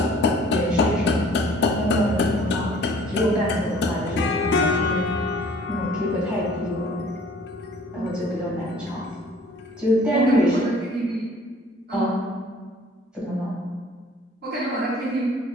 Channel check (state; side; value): normal; both; correlation 0.52